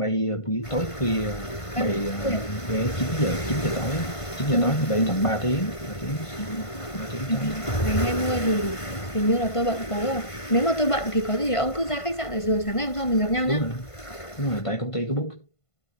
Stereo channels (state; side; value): late; right; 1.5 ms